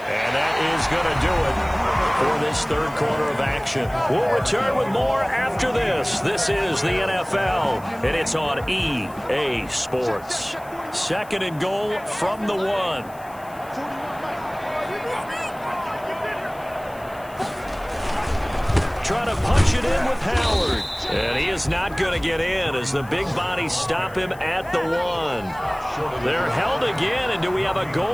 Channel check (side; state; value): left; noise; hiss, 24 dB below the sound